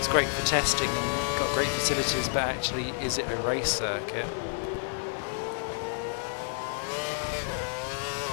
great for testing and got great facilities, but actually is it a race circuit?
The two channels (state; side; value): silent; right; digital silence